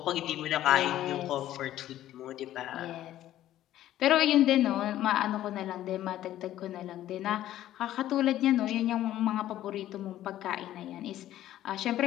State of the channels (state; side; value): quieter; right; 13.1 dB